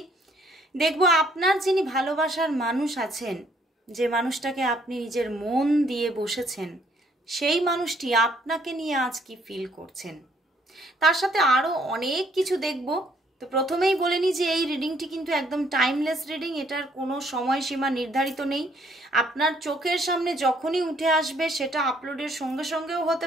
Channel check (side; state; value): both; normal; correlation 0.66